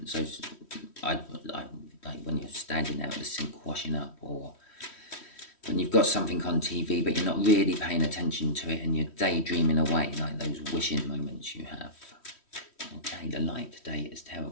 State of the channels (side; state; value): right; late; 3.1 ms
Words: So like when you're standing there at the sink washing up, or when you've got something on TV but you're not really paying attention to it and you're daydreaming away, like those wishing moments you have. Okay, the light today is